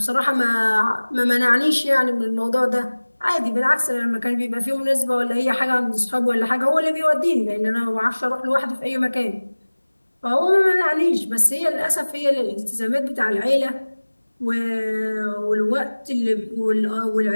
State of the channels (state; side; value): inverted; both; correlation -1.00